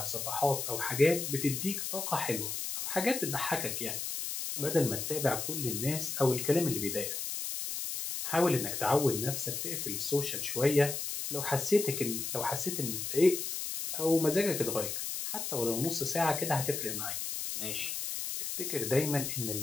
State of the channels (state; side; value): noise; left; hiss, 4 dB below the sound